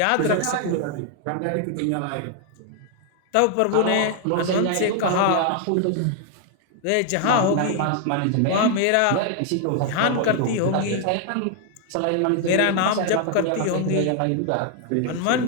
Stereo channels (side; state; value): both; different; correlation 0.00